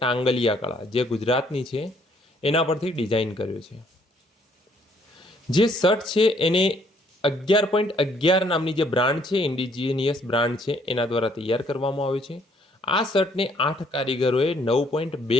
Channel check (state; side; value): normal; both; correlation 0.65